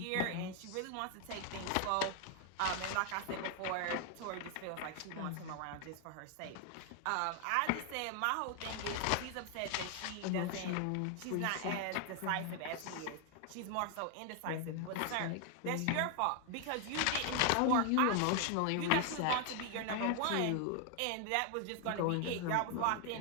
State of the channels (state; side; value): different; both; correlation 0.00